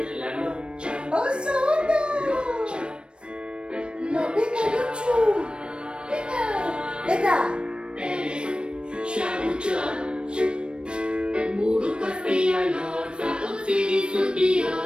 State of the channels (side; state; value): left; late; 0.056 ms